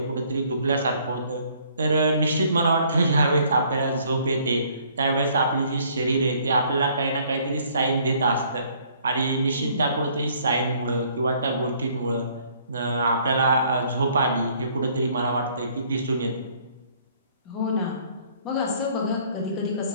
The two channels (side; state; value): both; inverted; correlation -0.61